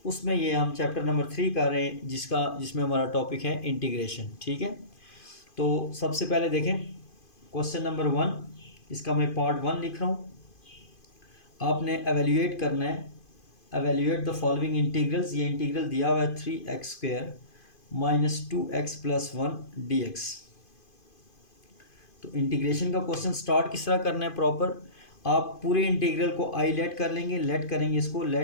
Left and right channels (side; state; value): right; late; 2.5 ms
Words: उसमें ये हम चैप्टर नंबर 3 कर रहे हैं, जिसमें हमारा टॉपिक है इंटीग्रेशन। ठीक है, तो सबसे पहले देखें क्वेश्चन नंबर 1, इसका मैं पार्ट 1 लिख रहा हूँ। आपने एवेल्यूएट करना है, एवेल्यूएट द फॉलोइंग इंटीग्रल्स। ये इंटीग्रल दिया हुआ है 3x² minus 2x plus 1 dx। तो इंटीग्रेशन का क्वेश्चन स्टार्ट किस तरह करना है प्रॉपर, आप पूरे इंटीग्रल को आई लेट कर लेंगे, लेट करेंगे इसको,